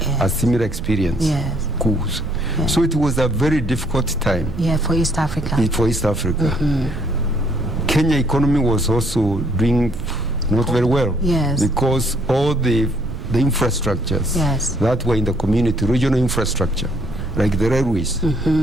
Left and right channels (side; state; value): right; noise; rumble, 9 dB below the sound